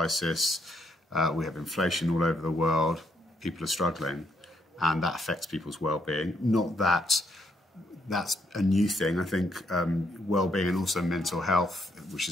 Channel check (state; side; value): normal; both; correlation 0.74